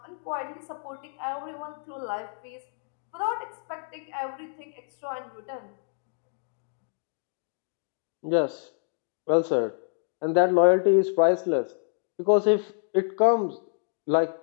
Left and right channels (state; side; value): silent; right; digital silence